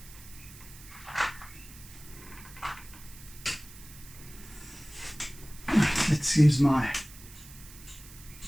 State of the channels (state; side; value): noise; right; hiss, 18 dB below the sound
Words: Let's use my